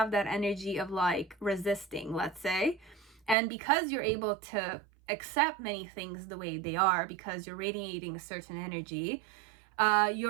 that energy of like resisting, let's say. And because you're able to accept many things the way they are, because you're radiating a certain energy,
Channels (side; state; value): left; drops out; at 3.4 s